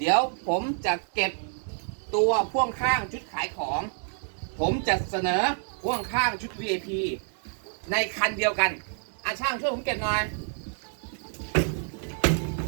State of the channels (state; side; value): silent; left; 59 dB below the other